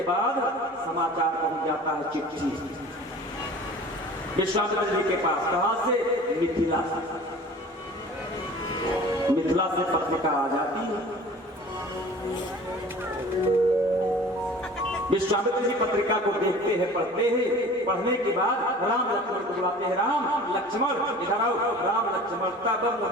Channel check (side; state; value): both; normal; correlation 0.43